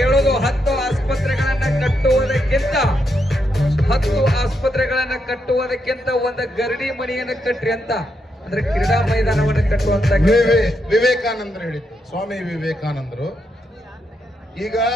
10 ಆಸ್ಪತ್ರೆಗಳನ್ನ ಕಟ್ಟುವುದಕ್ಕಿಂತ ಒಂದು ಗರಡಿ ಮನೆಯನ್ನು ಕಟ್ರಿ ಅಂತ. ಅಂದ್ರೆ ಕ್ರೀಡಾ ಮೈದಾನವನ್ನು ಕಟ್ಟುವಂತ ವಿವೇಕಾನಂದರು ಹೇಳಿದ್ರು, ಸ್ವಾಮಿ ವಿವೇಕಾನಂದರು. ಈಗ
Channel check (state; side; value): normal; both; correlation 0.81